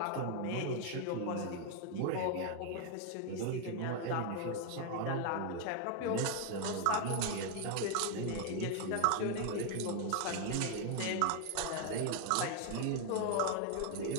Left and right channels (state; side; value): different; both; correlation 0.01